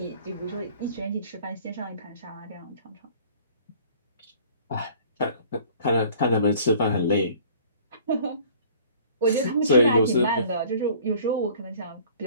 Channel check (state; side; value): inverted; both; correlation -0.51